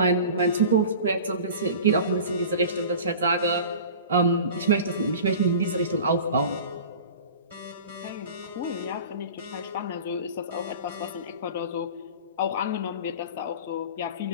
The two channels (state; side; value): inverted; both; correlation -0.38